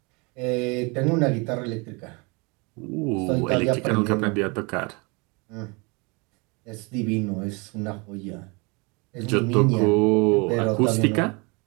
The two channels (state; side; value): quieter; left; 29.5 dB